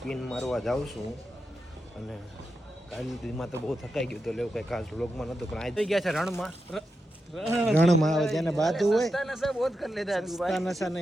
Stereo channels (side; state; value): both; normal; correlation 0.88